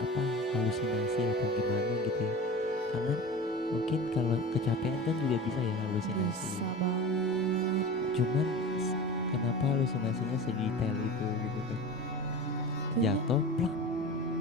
halusinasi atau gimana gitu ya. Karena mungkin kalau kecapean kan juga bisa ya halusinasi. Bisa banget. Cuman kenapa halusinasinya sedetail itu gitu kan? Kayaknya- Jatuh, plak,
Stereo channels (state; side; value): normal; both; correlation 0.33